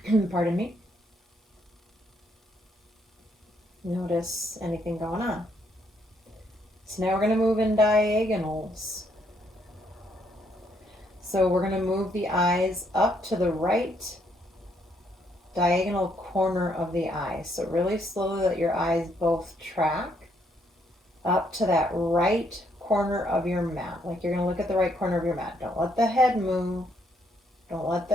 Pardon me. Notice anything going on. So now we're going to move in diagonals. So we're going to move the eyes up to the right diagonal corner of the eye. So really slowly let your eyes both track up to that right corner of your mat. Like you're going to look at the right corner of your mat. Don't let the head move. Don't let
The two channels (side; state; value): both; normal; correlation 0.72